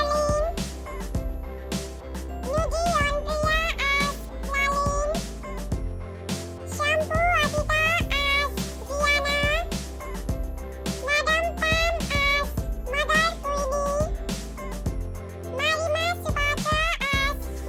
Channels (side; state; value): both; identical; correlation 1.00